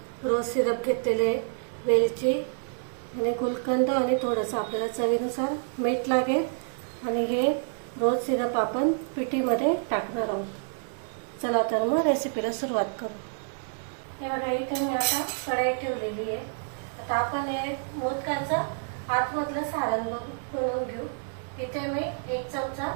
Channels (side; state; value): left; silent; digital silence